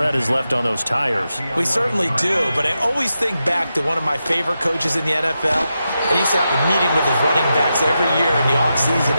is left on those tires. We certainly do, but I always think back to one of my favorite coaches in the NFL. And he used to have a meeting with his running backs every year in the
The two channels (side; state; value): both; inverted; correlation -0.88